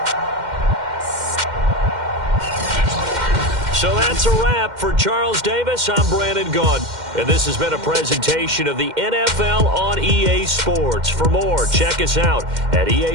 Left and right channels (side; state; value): left; late; 2.1 ms